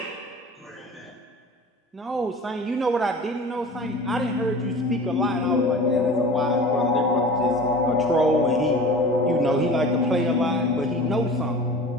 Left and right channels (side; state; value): both; normal; correlation 0.39